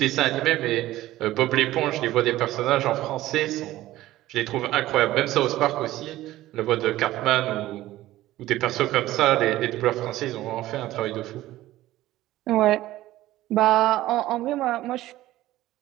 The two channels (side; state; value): left; quieter; 15.6 dB